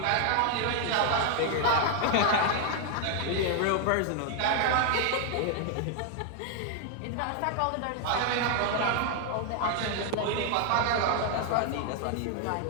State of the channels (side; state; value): both; different; correlation 0.00